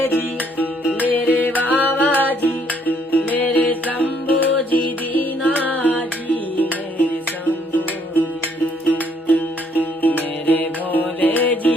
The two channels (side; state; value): both; normal; correlation 0.66